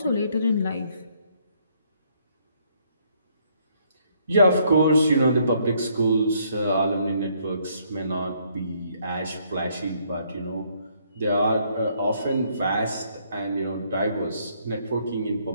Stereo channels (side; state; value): both; inverted; correlation -0.68